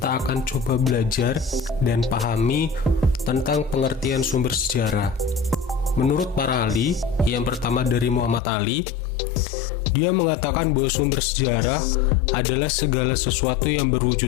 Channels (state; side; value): drops out; right; at 8.4 s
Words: akan coba belajar dan pahami tentang pengertian sumber sejarah. Menurut para ahli, yang pertama dari Muhammad Ali, dia mengatakan bahwa sumber sejarah adalah segala sesuatu yang